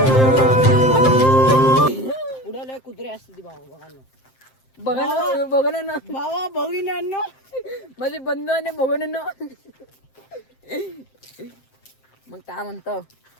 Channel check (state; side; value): late; right; 7.7 ms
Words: पुढे लय कुत्रे असते ती भावा बघा ना. बघा ना भावा बघिनांनो माझे बंधू आणि बघून ना मग काय म्हणतो